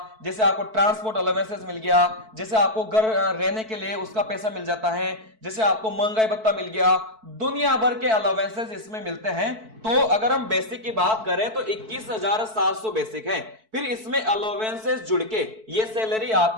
जैसे आपको ट्रांसपोर्ट अलाउंसेस मिल गया, जैसे आपको घर रहने के लिए उसका पैसा मिल जाता है, जैसे आपको महंगाई भत्ता मिल गया, दुनिया भर के अलाउंसेस इसमें मिलते हैं। तो अगर हम बेसिक की बात करें तो 21,700 बेसिक है, फिर इसमें अलाउंसेस जुड़ के ये सैलरी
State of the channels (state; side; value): late; left; 4.6 ms